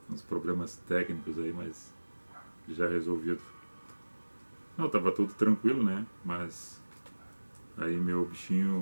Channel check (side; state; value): both; inverted; correlation -1.00